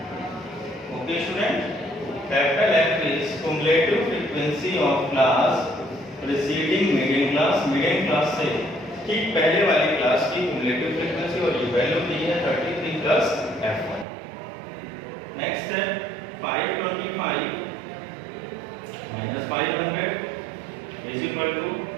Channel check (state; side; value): drops out; left; at 14.1 s